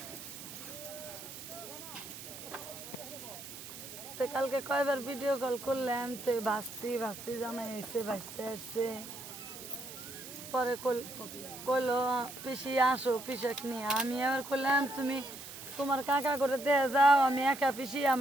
তো কালকে কয়বার ভিডিও কল করলাম, তো ভাস্তি জামাই এসে ভাসতে আসছে। পরে কইলো পিসি আসো পিসাক নিয়ে। আমি আবার কইলাম তুমি তোমার কাকা করে দিয়ে যাও, আমি একা পিসি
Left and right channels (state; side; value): noise; right; hiss, 12 dB below the sound